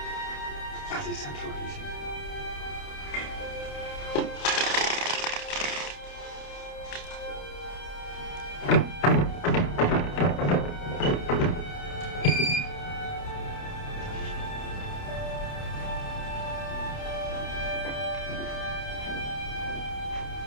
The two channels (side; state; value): right; late; 29 ms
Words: Bloody central heating.